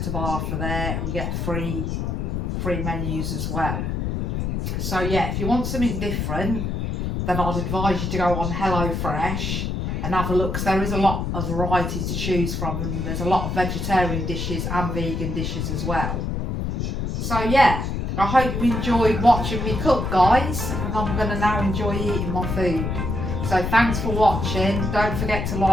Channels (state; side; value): noise; left; rumble, 2 dB below the sound